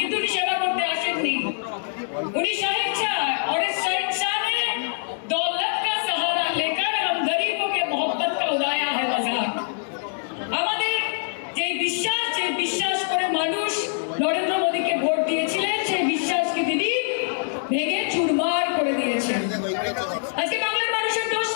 উনি সেবা করতে আসেননি। उन्हीं शहंशाह और इस शहंशाह ने दौलत का सहारा लेकर हम गरीबों के मोहब्बत का उड़ाया है मजाक। আমাদের যে বিশ্বাস করে মানুষ নরেন্দ্র মোদীকে ভোট দিয়েছিলেন, সেই বিশ্বাসকে তিনি ভেঙে চুরমার করে দিয়েছেন। আজকে বাংলার মানুষের দোষ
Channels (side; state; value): right; silent; digital silence